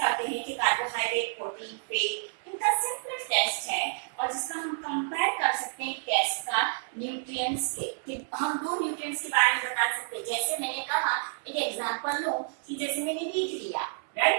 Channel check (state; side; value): silent; left; 58 dB below the other